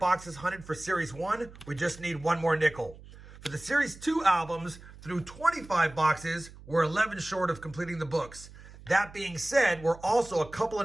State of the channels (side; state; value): right; noise; hum, 19 dB below the sound